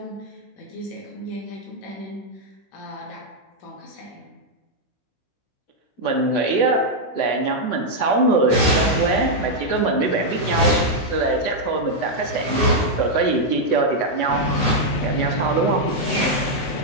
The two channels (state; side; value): late; right; 15 ms